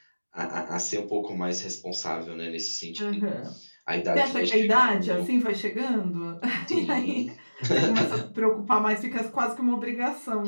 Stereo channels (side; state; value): both; inverted; correlation -1.00